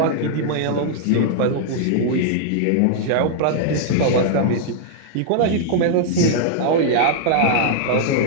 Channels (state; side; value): different; both; correlation -0.01